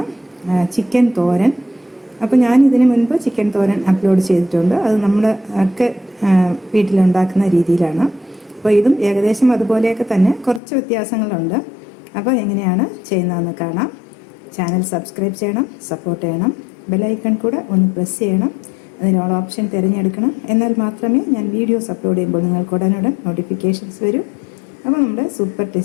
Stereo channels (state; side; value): drops out; right; at 10.6 s